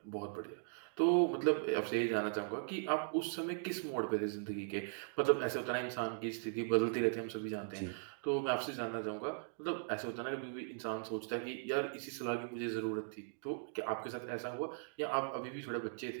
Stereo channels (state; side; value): silent; left; digital silence